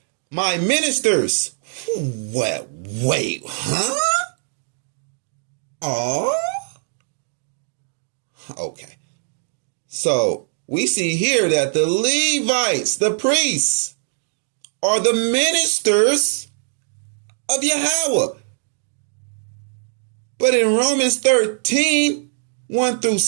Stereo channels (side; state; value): left; silent; digital silence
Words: my ministers. Wait, huh? Oh, okay. So we see here that the Levites, the priests, are the ministers of Yahweh. But in Romans 13, 1 through